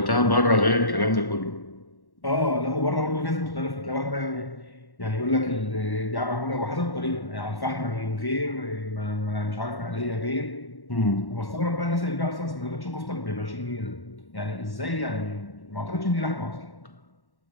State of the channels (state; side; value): late; right; 1.1 ms